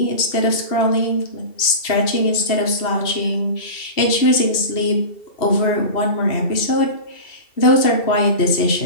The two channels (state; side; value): late; right; 2.7 ms